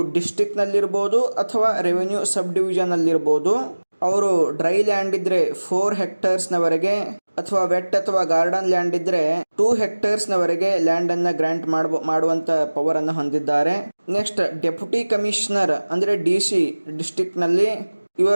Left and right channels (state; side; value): inverted; both; correlation -1.00